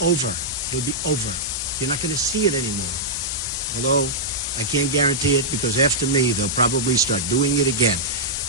over. It'll be over. You're not going to see it anymore. Although I can't guarantee it, because after me, they'll probably start doing it again.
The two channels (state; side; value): normal; both; correlation -0.10